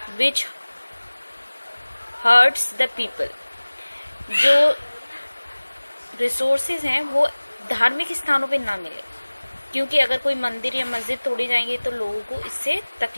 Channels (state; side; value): inverted; both; correlation -1.00